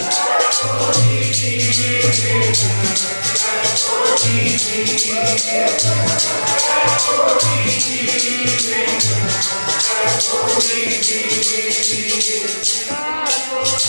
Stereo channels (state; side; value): inverted; both; correlation -1.00